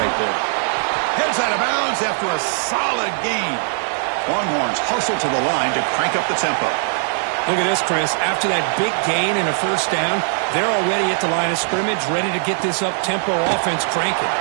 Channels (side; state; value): left; silent; 66 dB below the other